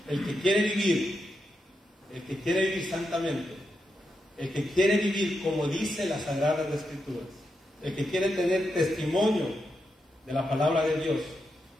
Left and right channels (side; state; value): both; normal; correlation 0.85